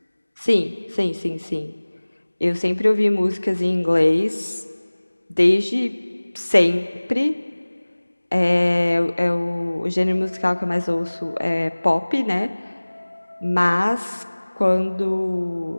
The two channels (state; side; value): inverted; both; correlation -1.00